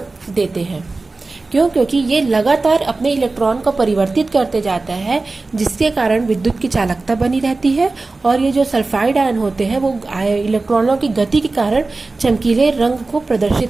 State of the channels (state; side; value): quieter; left; 3.5 dB